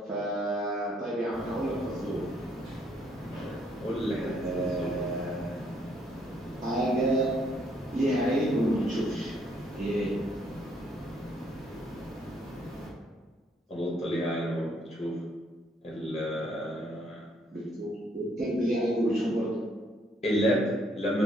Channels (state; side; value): normal; both; correlation 0.68